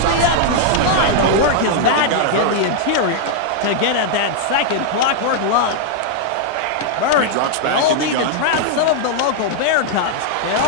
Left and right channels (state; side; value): different; both; correlation -0.01